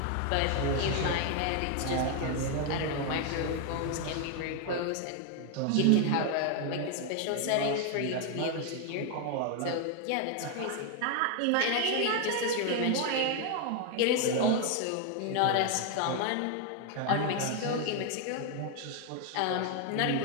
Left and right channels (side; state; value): both; different; correlation 0.01